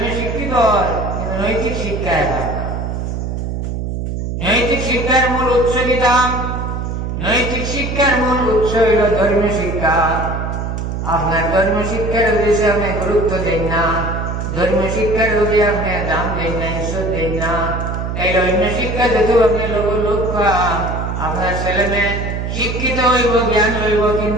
শিক্ষিত কিন্তু নৈতিক শিক্ষায় হয় না। নৈতিক শিক্ষার মূল উৎস দিতাম, নৈতিক শিক্ষার মূল উৎস হইল ধর্মীয় শিক্ষা। আপনার ধর্মীয় শিক্ষার উদ্দেশ্যে আপনি গুরুত্ব দেন না, ধর্মীয় শিক্ষার যদি আপনি দাম দেন না, ঈশ্বর দেন না, এই অন্য শিক্ষা যেহেতু আপনি লক্ষ্য আপনার ছেলে মেয়ে শিক্ষিত হইব, জ্ঞান হইব,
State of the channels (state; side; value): noise; right; hum, 3 dB below the sound